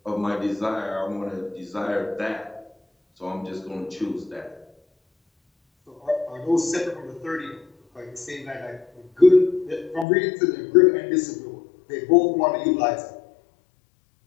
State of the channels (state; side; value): drops out; right; at 10.1 s